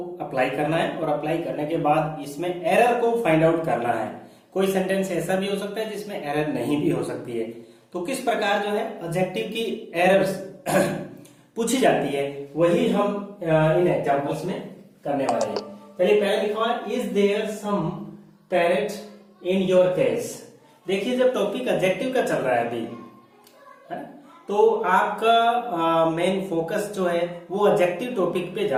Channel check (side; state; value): both; identical; correlation 1.00